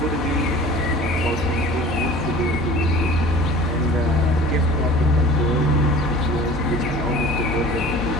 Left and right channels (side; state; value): both; normal; correlation 0.43